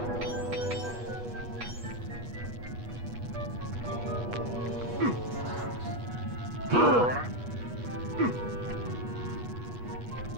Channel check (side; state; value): left; late; 8.3 ms